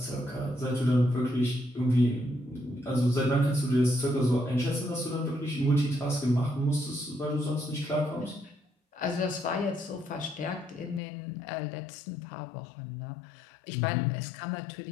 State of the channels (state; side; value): drops out; right; at 11.0 s